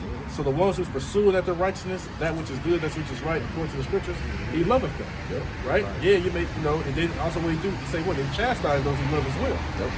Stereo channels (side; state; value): both; identical; correlation 1.00